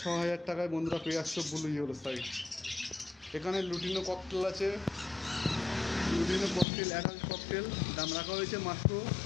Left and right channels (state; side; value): drops out; right; at 6.7 s